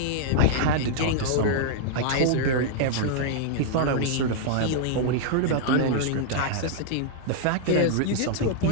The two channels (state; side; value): different; both; correlation -0.01